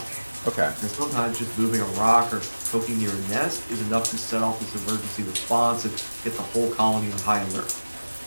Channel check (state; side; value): inverted; both; correlation -1.00